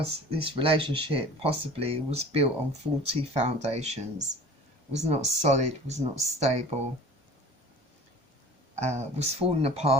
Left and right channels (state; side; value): normal; both; correlation 0.43